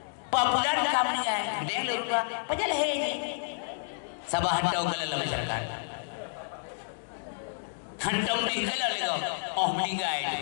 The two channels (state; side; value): silent; right; digital silence